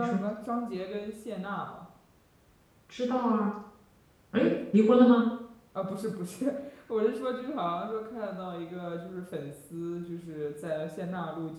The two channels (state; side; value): identical; both; correlation 1.00